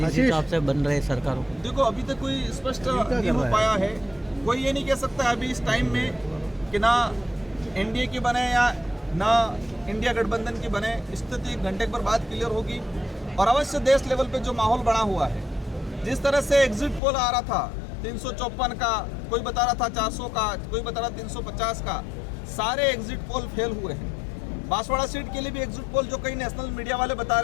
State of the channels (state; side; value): drops out; right; at 17.0 s